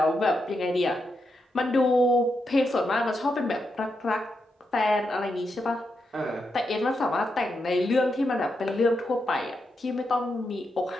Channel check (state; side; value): normal; both; correlation 0.84